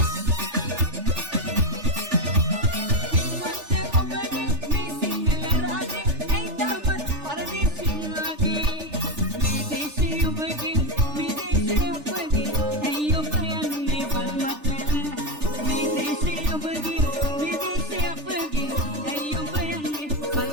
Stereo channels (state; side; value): late; left; 3.4 ms